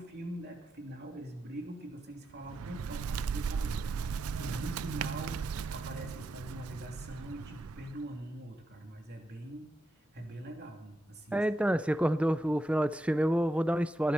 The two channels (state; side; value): normal; both; correlation 0.87